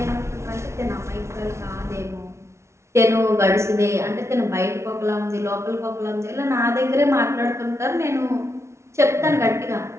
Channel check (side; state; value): left; late; 0.13 ms